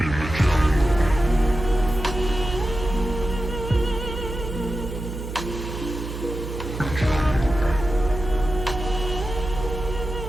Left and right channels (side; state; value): right; noise; hum, 8 dB below the sound